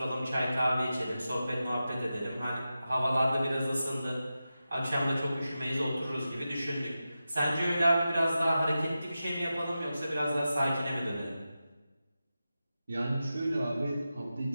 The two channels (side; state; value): both; inverted; correlation -0.92